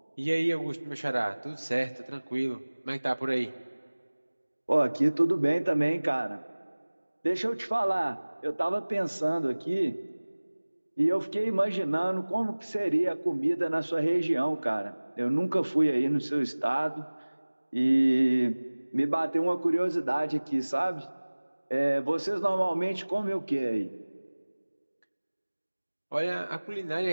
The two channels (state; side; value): inverted; both; correlation -1.00